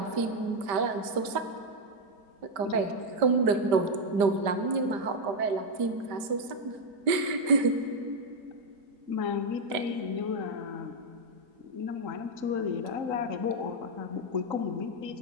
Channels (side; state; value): left; late; 5.1 ms